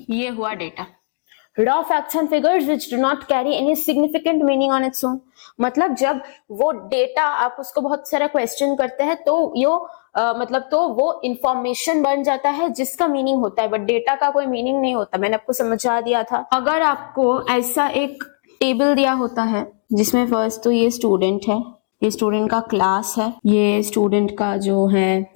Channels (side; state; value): right; silent; digital silence